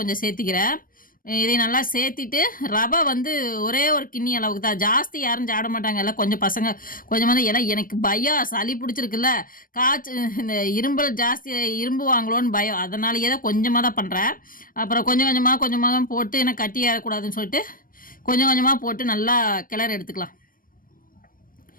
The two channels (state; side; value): late; right; 0.41 ms